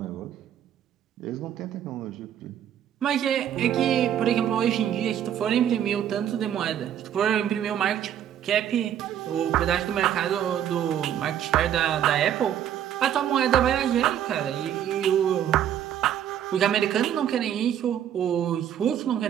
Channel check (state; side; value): quieter; left; 10.1 dB